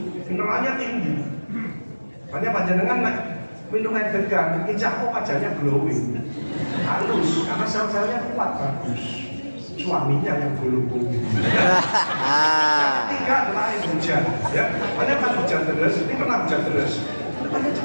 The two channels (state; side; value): inverted; both; correlation -1.00